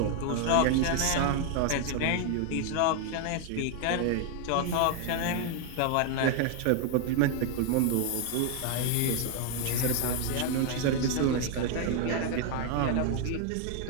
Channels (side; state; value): both; different; correlation 0.00